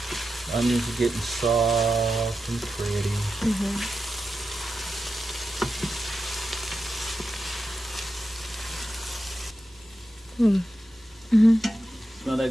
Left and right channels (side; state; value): both; normal; correlation 0.90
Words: Onions are getting soft and pretty. Mm-hmm. Mm-hmm. Smell